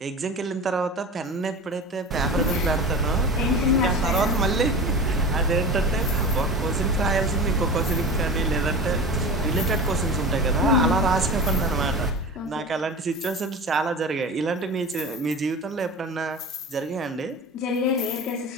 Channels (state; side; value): normal; both; correlation 0.32